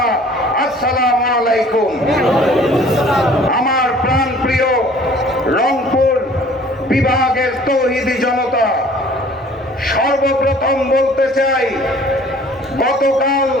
আসসালামু আলাইকুম। আমার প্রাণপ্রিয় রংপুর বিভাগের তৌহিদি জনতা, সর্বপ্রথম বলতে চাই, গতকাল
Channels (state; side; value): normal; both; correlation 0.52